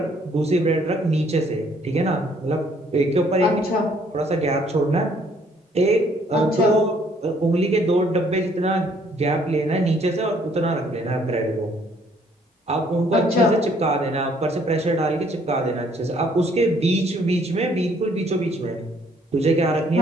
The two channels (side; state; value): both; normal; correlation 0.63